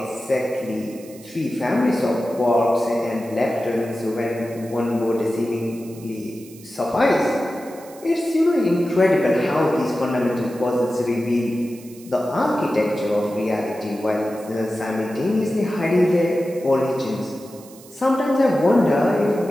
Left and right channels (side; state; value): right; noise; hiss, 22 dB below the sound